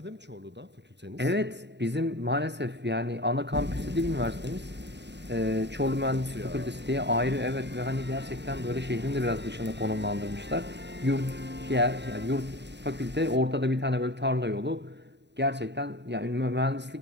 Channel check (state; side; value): late; left; 0.50 ms